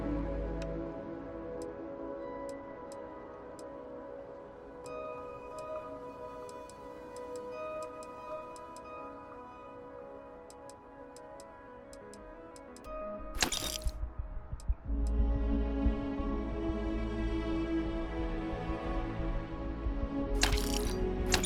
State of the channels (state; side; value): identical; both; correlation 1.00